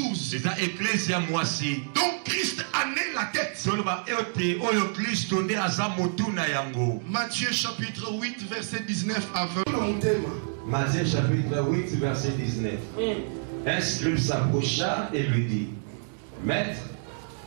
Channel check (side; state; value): left; silent; digital silence